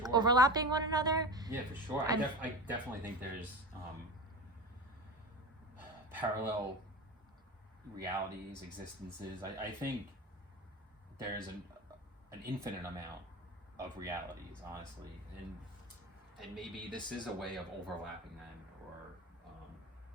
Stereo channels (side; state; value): both; normal; correlation 0.28